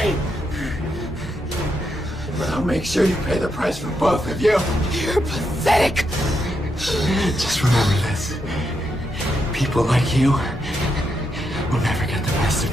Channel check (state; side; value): normal; both; correlation 0.82